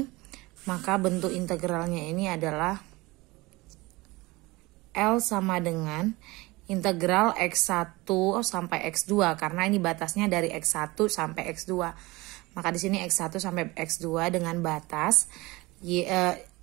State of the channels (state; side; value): quieter; left; 22.0 dB